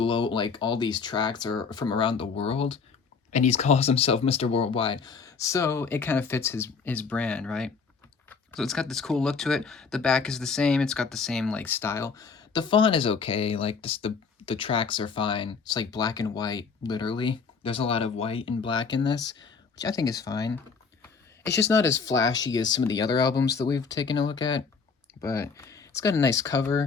all these tracks are from around the world, and he calls himself Mr. Worldwide. So it kind of fits his brand, right? So it's got this cool look to it. The back is the same. It's got the same like style. The font is okay. Like the tracks are fine. It's like black and white, literally. There's a lot of white and black in this, which I think is fine. It's just not as flashy as some of the other albums that we've taken a look at, but it's got a nice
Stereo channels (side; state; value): right; quieter; 5.2 dB